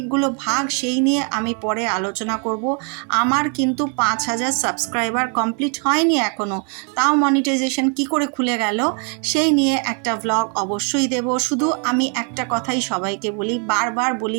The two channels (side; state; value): left; quieter; 39.5 dB